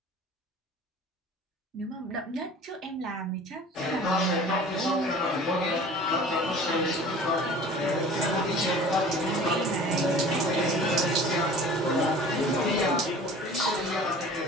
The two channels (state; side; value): normal; both; correlation 0.44